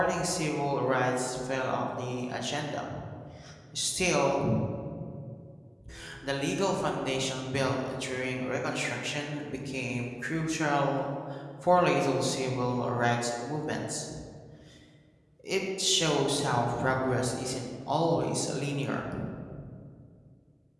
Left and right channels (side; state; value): both; identical; correlation 1.00